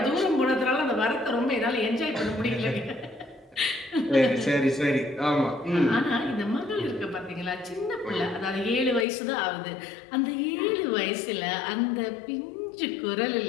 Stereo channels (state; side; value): drops out; right; at 9.1 s